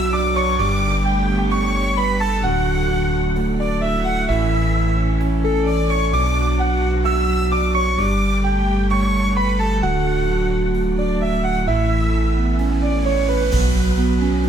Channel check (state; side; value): normal; both; correlation 0.74